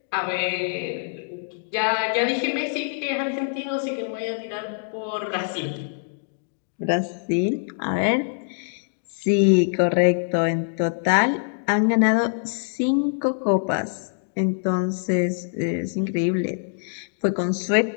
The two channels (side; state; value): right; silent; digital silence